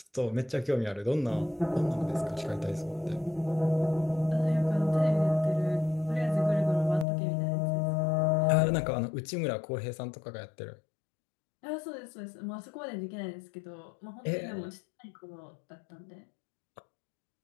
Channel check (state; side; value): drops out; right; at 7.1 s